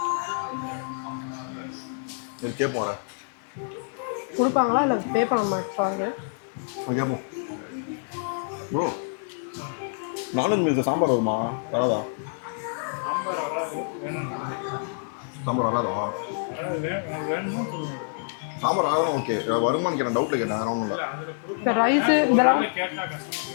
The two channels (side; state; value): right; silent; digital silence